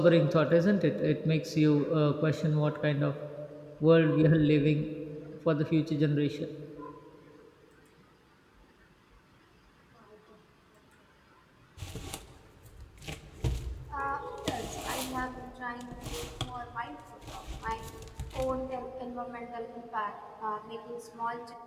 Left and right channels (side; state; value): both; identical; correlation 1.00